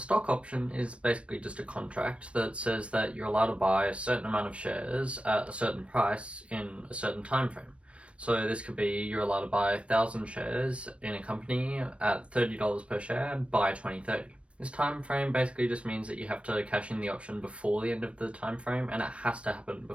option is basically just a contract that says that you're allowed to buy a certain amount of shares at a certain price in a certain time frame. So this could be you're allowed to buy 1,000 shares in a company at $30 per share by 2030. This time frame basically just means that you have to cash in the option before the end of the time frame, and it has to happen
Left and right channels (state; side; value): late; left; 0.061 ms